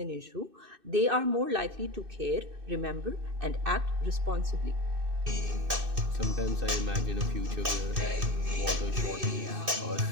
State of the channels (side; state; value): left; late; 2.6 ms